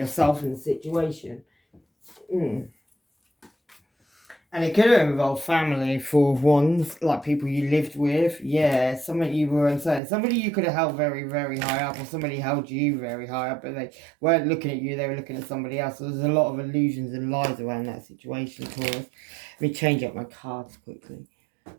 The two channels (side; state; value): left; drops out; at 10.0 s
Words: in the situation. And it could have involved family, 4 of Wands, like people you lived with. Yeah, somebody you were uncertain. Somebody you could have held very, very high up, or somebody held you very high up, but they weren't looking at you, they were looking at somebody else. So there's a lot of illusions and lies around that situation, Taurus. Let me change up my cards quickly.